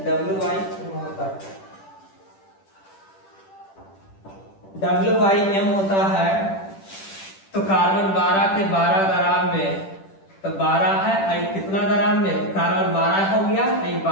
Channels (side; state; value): right; late; 10 ms